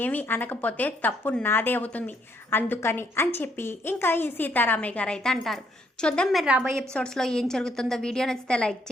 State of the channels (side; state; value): both; normal; correlation 0.71